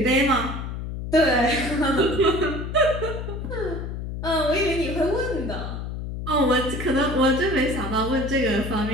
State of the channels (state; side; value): noise; left; hum, 6 dB below the sound